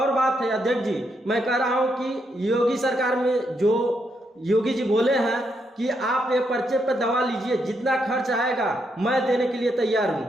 बात है अध्यक्ष जी, मैं कह रहा हूं कि योगी सरकार में जो योगी जी बोले हैं कि आप ये पर्चे पर दवा लीजिए, जितना खर्च आएगा मैं देने के लिए तैयार हूं।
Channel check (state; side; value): normal; both; correlation 0.79